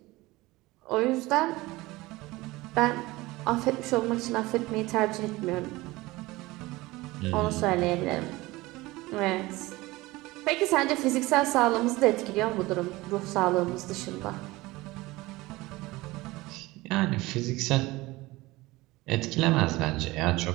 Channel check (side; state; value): left; quieter; 20.3 dB